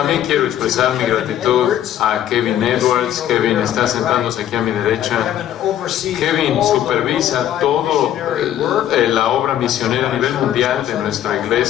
quiero expresar mi gratitud a Kevin Edwards. Kevin está sentándose aquí a mi derecha. Kevin supervisa todo la obra misionera a nivel mundial de nuestra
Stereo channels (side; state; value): right; quieter; 11.4 dB